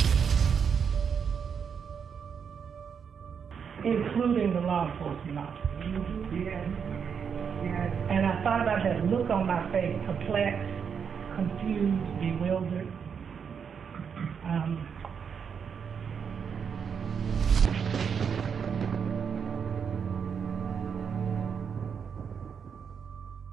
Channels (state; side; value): quieter; left; 6.9 dB